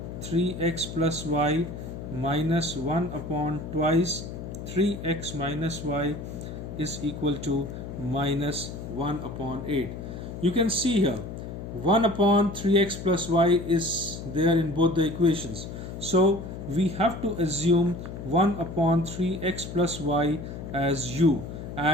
3x plus y minus 1 upon twice 3x minus y is equal to minus 1 upon 8. You can see here 1 upon 3x plus y is there in both the equations. So we have to assume 1 upon 3x plus y as u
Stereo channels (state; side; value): noise; left; hum, 9 dB below the sound